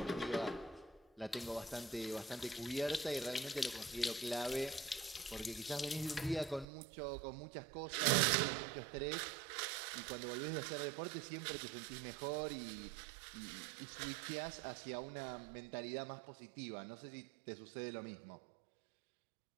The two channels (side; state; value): left; drops out; at 6.7 s